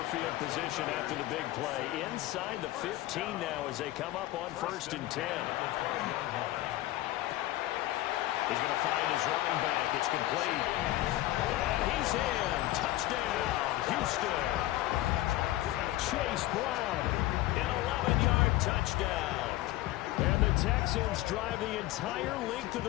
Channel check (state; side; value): quieter; right; 16.3 dB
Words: field position after the big play? Inside the 15 now as they come up on 1st and 10. He's going to find his running back. It's complete. And he's in. Touchdown, Houston. Chase Brown, an 11-yard touchdown. And the Texans drive the entire length of